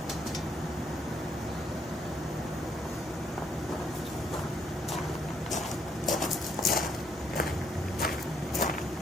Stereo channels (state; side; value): normal; both; correlation 0.70